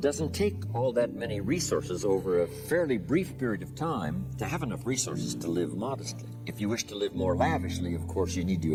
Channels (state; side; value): identical; both; correlation 1.00